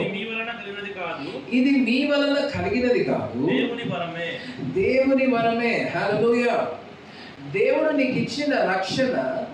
మీ వలన కలిగినది కాదు, ఇది మీ వలన కలిగినది కాదు, దేవుని వరమే. దేవుని వరమే. హల్లెలూయా. దేవుడు నీకు ఇచ్చిన రక్షణ,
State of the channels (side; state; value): both; identical; correlation 1.00